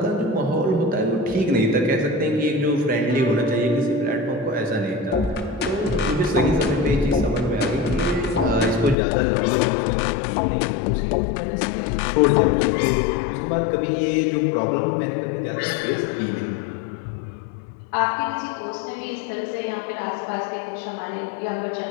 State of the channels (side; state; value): right; drops out; at 9.0 s